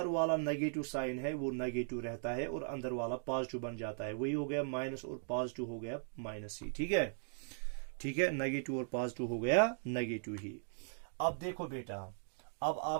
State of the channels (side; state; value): left; silent; digital silence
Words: वाला नेगेटिव साइन है वो नेगेटिव रहता है और अंदर वाला पॉजिटिव बन जाता है। वही हो गया माइनस और पॉजिटिव हो गया माइनस ही, ठीक है, ठीक है, नेगेटिव और पॉजिटिव हो गया नेगेटिव ही। अब देखो बेटा, अब